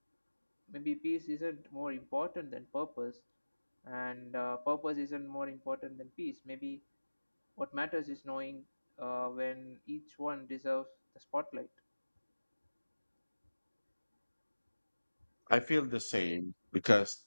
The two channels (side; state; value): both; inverted; correlation -1.00